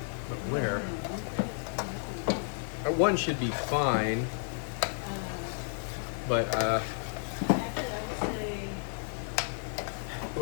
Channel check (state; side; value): silent; right; 56 dB below the other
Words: But where? One should be fine. But